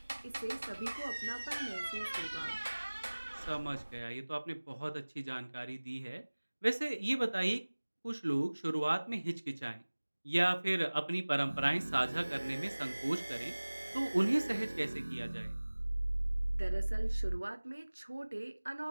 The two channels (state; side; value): inverted; both; correlation -1.00